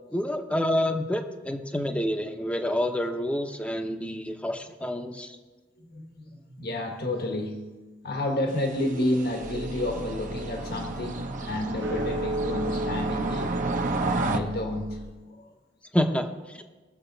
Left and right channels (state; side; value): normal; both; correlation 0.64